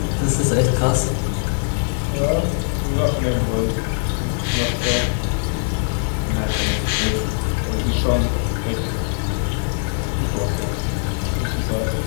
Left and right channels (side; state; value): right; silent; digital silence